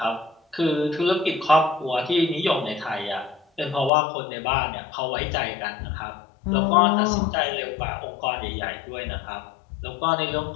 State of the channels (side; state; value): right; drops out; at 3.9 s